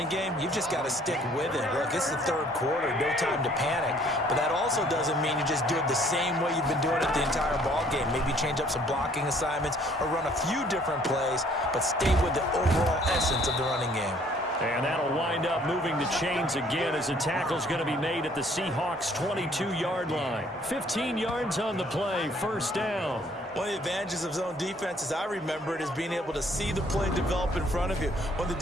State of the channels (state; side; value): normal; both; correlation 0.60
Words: game, you've just got to stick with it. Look, it's the third quarter, no time to panic. But that also doesn't mean you just do it the same way you've been doing it the entire ball game. Maybe change up some blocking assignments or run a few different plays, but stay with the overall essence of the running game. And that'll wind up moving the chains again as a tackle's going to be made at the Seahawks' 22-yard line. 15 yards on the play, first down. One of the advantages of zone defense, as I remember it, is being able to see the play develop in front of you. One of